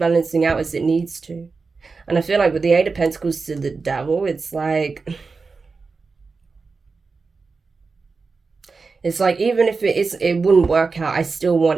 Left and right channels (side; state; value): left; quieter; 4.5 dB